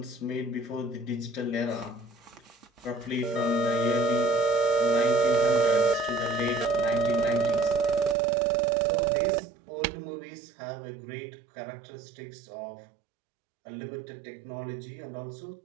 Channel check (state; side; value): drops out; left; at 8.2 s